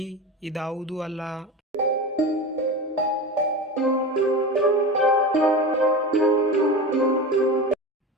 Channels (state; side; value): normal; both; correlation 0.26